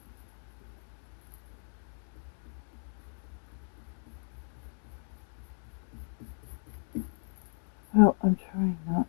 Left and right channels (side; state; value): right; silent; 54 dB below the other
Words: Well, I'm trying not